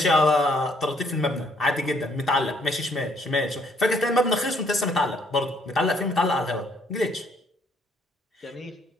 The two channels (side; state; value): both; normal; correlation 0.66